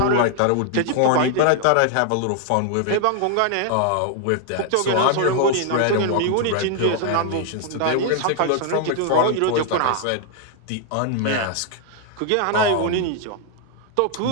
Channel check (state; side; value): different; both; correlation 0.00